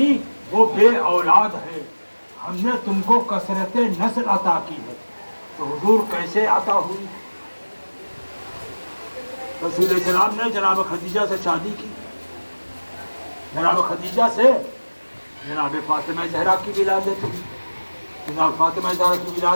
وہ بے اولاد ہے، ہم نے تم کو کثرت نسل عطا کی ہے۔ تو حضور کیسے عطا ہوئی؟ رسول السلام نے جناب خدیجہ سے شادی کی، جناب خدیجہ سے جناب فاطمہ زہرا کی ولادت ہوئی، جناب فاطمہ زہرا کی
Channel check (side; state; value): both; inverted; correlation -1.00